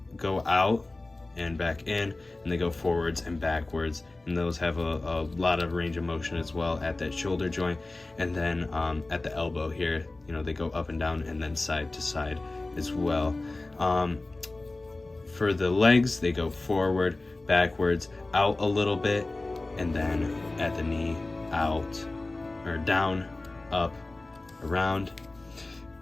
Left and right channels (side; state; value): right; quieter; 3.0 dB